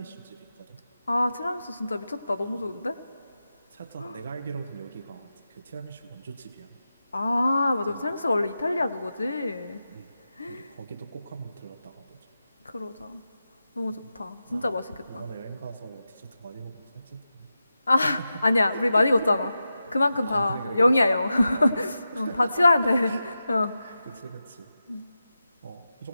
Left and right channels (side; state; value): both; inverted; correlation -0.91